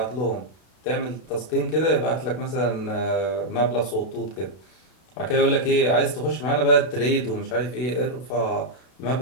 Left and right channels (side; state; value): right; late; 32 ms